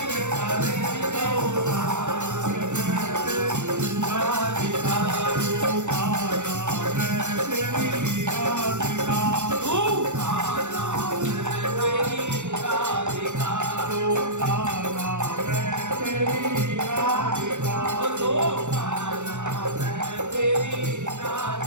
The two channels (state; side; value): late; left; 0.84 ms